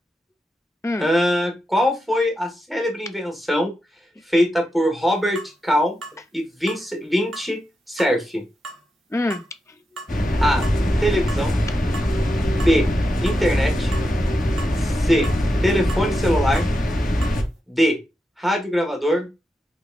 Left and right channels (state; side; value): normal; both; correlation 0.87